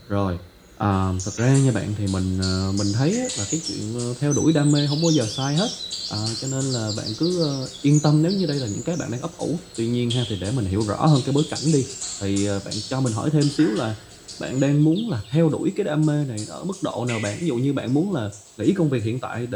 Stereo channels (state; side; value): identical; both; correlation 1.00